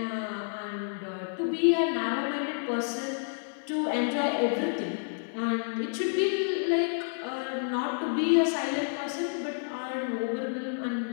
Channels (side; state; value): right; silent; digital silence